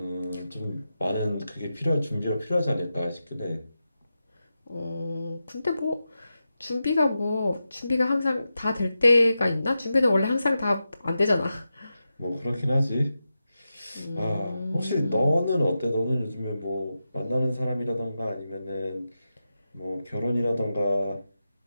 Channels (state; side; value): inverted; both; correlation -0.90